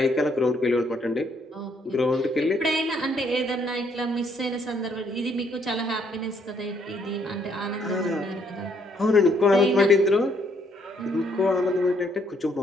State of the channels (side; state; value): both; normal; correlation 0.69